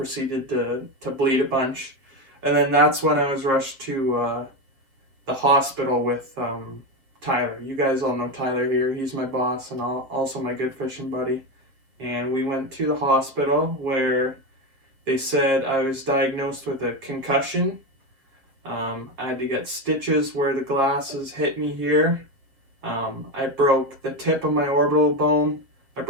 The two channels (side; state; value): left; late; 7.4 ms